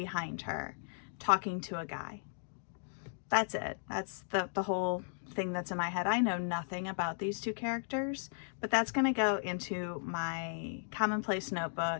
her, talking to a guy. That's it. That's the whole thing that's in my head. I know nothing about these two characters, but that's going to go into my Commonplace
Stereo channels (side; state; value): right; silent; digital silence